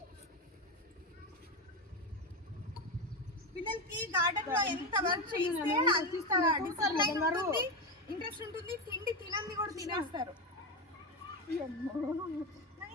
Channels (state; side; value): normal; both; correlation 0.13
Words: పిల్లలకి గార్డెన్ లో ఎంత వర్క్ చేస్తే ఇంట్రెస్ట్ ఉంటుంది, తిండి తినంది కూడా తినేస్తారు.